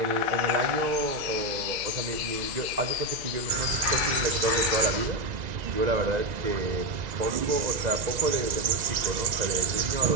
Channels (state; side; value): late; left; 1.9 ms